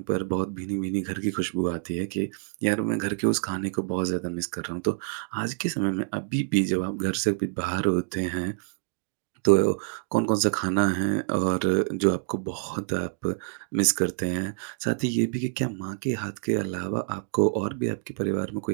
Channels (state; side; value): silent; left; digital silence